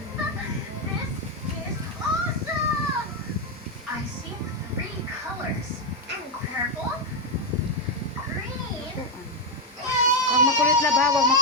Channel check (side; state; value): both; normal; correlation 0.03